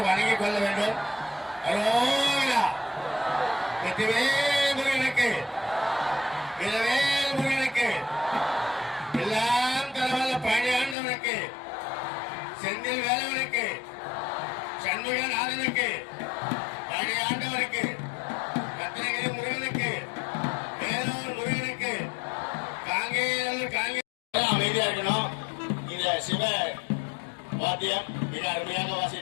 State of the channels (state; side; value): drops out; right; at 11.0 s